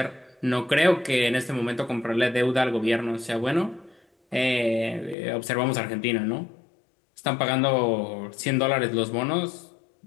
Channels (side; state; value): right; drops out; at 5.2 s